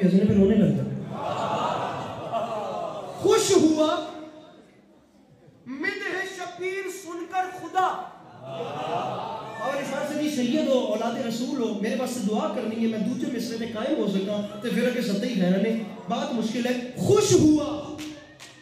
ہنسنے پہ رونے لگ جائے. خوش ہوا مدح شبیر سن کر خدا. اور اس بات سے سید ہو, اولاد رسول ہو, میرے پاس سے دعا کرنی ہے میں دوسرے مصرے میں قائم ہو سکا تو پھر کہ سطحی خیرانے بات مشکل ہے. خوش ہوا,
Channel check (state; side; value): identical; both; correlation 1.00